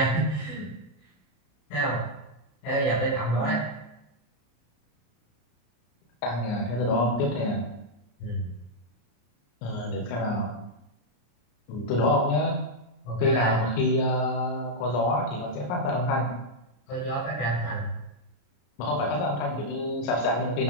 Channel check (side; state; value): right; late; 34 ms